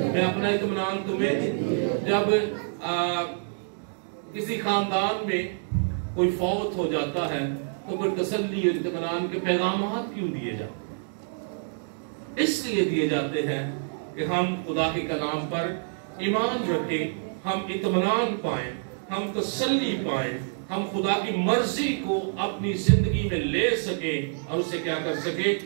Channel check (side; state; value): left; silent; digital silence